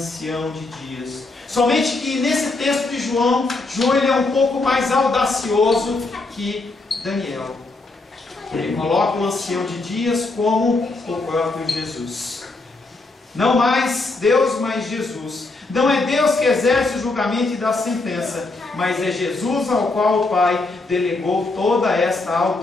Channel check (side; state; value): right; quieter; 3.3 dB